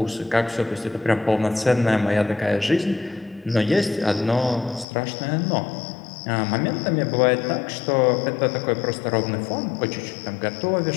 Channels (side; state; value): right; drops out; at 4.9 s